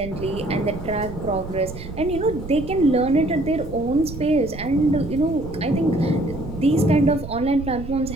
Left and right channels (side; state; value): right; noise; rumble, 11 dB below the sound